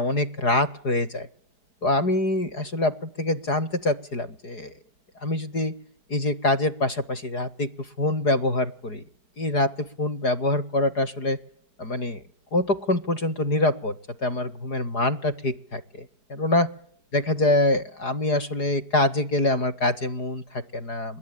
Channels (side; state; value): right; late; 4.8 ms